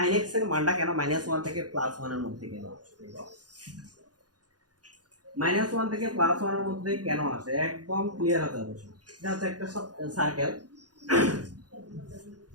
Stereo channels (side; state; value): left; late; 0.69 ms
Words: x এর মানটা কেন -1 থেকে +1 এর মধ্যে কেন আসে, -1 থেকে +1 এর মধ্যে কেন আসে একদম ক্লিয়ার হতে হবে। এটা হচ্ছে একটা সার্কেল,